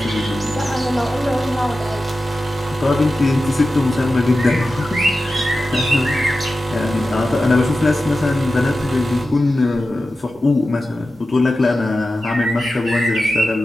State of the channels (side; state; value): both; normal; correlation 0.93